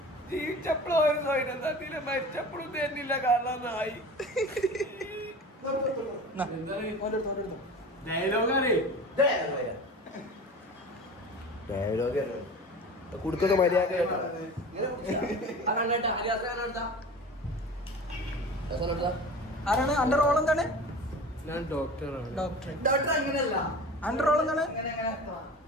ജീവിച്ചപ്പോഴും ഒരു സ്വയം തന്നില്ല, മരിച്ചപ്പോഴും തന്നില്ല. കാരണം നായി കുടുക്കൊക്കെ മര്യാദ. ആരാണ് അന്റെ റോൾ? എന്താണ്? ഞാൻ ഡോക്ടറാണ്. ഡോക്ടർ അങ്ങനെയല്ല. അന്റെ റോൾ എന്താണ്?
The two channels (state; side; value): normal; both; correlation 0.37